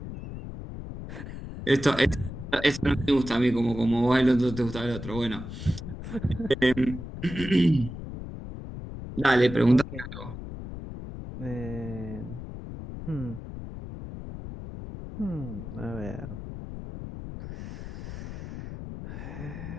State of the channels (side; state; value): left; noise; rumble, 10 dB below the sound